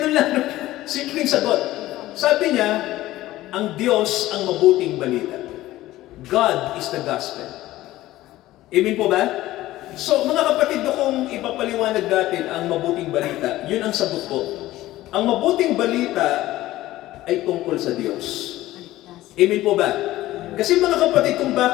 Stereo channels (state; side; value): quieter; right; 16.0 dB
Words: lang, no? Simpleng sagot. Sabi niya, ang Diyos ang mabuting balita. God is the gospel. Amen po ba? So, mga kapatid, kung ipapaliwanag natin ang mabuting balita, yun ang sagot po. Ang mabuting balita ay tungkol sa Diyos. Amen po ba? Kasi mga kapatid, kung